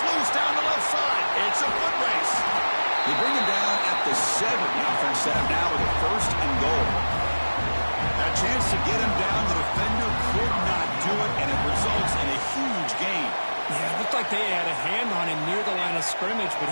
loose down the left side. It's a foot race. They bring him down at the 7. The offense set up now with a first and goal Chance to get him down. The defender could not do it, and it results in a huge gain. Yeah, it looked like they had a hand on him near the line of scrimmage, but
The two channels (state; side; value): inverted; both; correlation -1.00